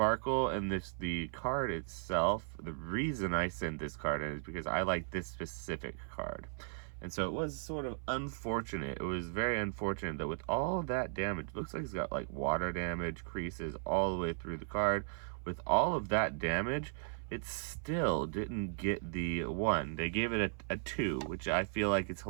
and the card itself, the reason I sent this card in is because I like this specific card. And so it was sort of unfortunate. It was very unfortunate that with all that damage, looks like it's got like water damage, creases all the way through the card. With all of that damage, it still didn't get the 1. They gave it a 2, which I feel like it's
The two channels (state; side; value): silent; left; 53 dB below the other